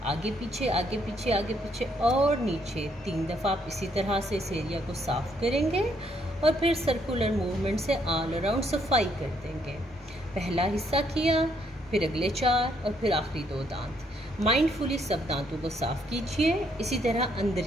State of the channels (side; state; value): both; normal; correlation 0.71